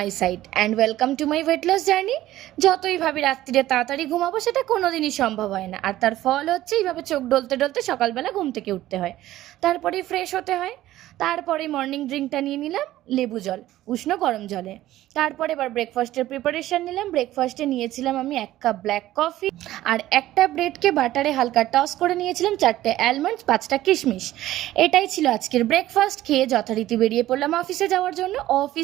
side and welcome to my weight loss journey. যতই ভাবি রাত্রিরে তাড়াতাড়ি ঘুমাবো সেটা কোনোদিনই সম্ভব হয় না, আর তার ফল হচ্ছে এইভাবে চোখ ডলতে ডলতে সকালবেলা ঘুম থেকে উঠতে হয়, তারপরে ফ্রেশ হতে হয়, তারপরে মর্নিং ড্রিঙ্কটা নিয়ে নিলাম লেবু জল উষ্ণ গরম জলে। তারপরে এবার ব্রেকফাস্টের প্রিপারেশন নিলাম। ব্রেকফাস্টে নিয়েছিলাম আমি 1 কাপ ব্ল্যাক কফি আর একটা ব্রেডকে বাটারে হালকা টস করে নিয়েছিলাম, 4টে অ্যালমন্ডস, 5টা কিশমিশ। এটাই ছিল আজকের ব্রেকফাস্ট। খেয়ে যথারীতি বেরিয়ে পড়লাম অফিসে যাওয়ার জন্য।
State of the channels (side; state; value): left; quieter; 14.7 dB